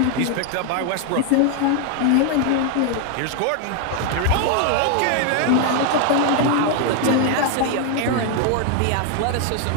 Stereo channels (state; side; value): different; both; correlation 0.01